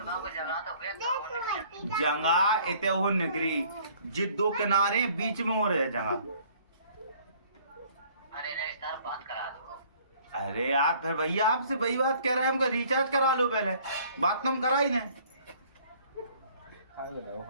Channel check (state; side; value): inverted; both; correlation -0.57